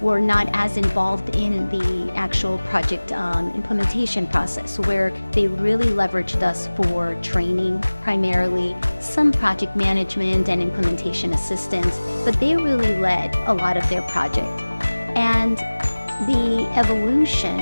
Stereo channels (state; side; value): inverted; both; correlation -1.00